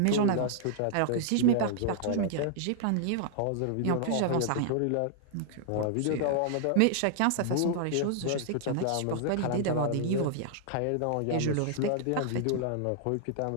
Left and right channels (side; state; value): both; different; correlation -0.01